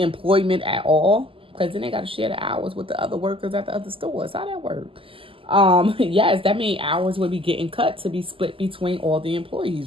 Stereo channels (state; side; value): late; left; 0.26 ms